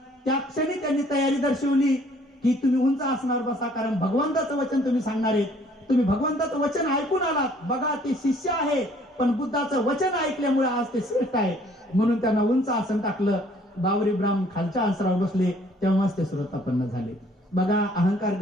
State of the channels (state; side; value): normal; both; correlation 0.59